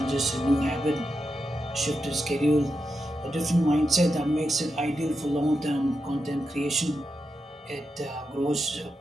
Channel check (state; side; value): normal; both; correlation 0.87